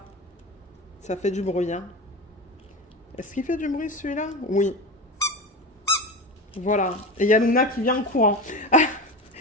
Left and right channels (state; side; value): normal; both; correlation 0.26